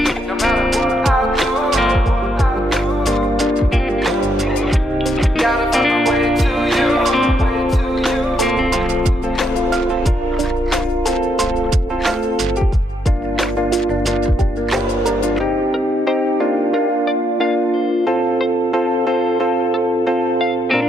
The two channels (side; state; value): both; normal; correlation 0.77